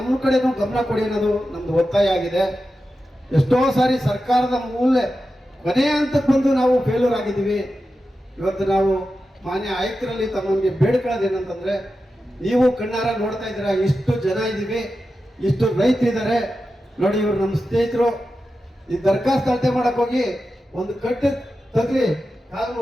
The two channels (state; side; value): normal; both; correlation 0.91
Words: ಕಡೆನೂ ಗಮನ ಕೊಡಿ ಅನ್ನೋದು ನಮ್ದು ಒತ್ತಾಯ ಆಗಿದೆ. ಎಷ್ಟೋ ಸಾರಿ ಸರ್ಕಾರದ ಕೊನೆಯ ಹಂತಕ್ಕೆ ಬಂದು ನಾವು ಫೇಲ್ಯೂರ್ ಆಗಿದ್ದೀವಿ. ಇವತ್ತು ನಾವು ಮಾನ್ಯ ಆಯುಕ್ತರಲ್ಲಿ ತಮಗೆ ಬೇಡ್ಕೊಳ್ಳೋದೇನಂತಂದ್ರೆ, ನೀವು ಕಣ್ಣಾರ ನೋಡ್ತಾ ಇದ್ದೀರಾ, ಇಷ್ಟು ಜನ ಇದ್ದೀವಿ, ಇಷ್ಟು ರೈತರಿದ್ದಾರೆ ನೋಡಿ. ಇವರು ನಮ್ಮ ಸ್ನೇಹಿತರು ಈ ದರ್ಖಾಸ್ತು ಅಳತೆ ಮಾಡಕ್ ಹೋಗಿ ಒಂದು ಕಟ್ಟು ತಗ್ಲಿ ಕಾಲು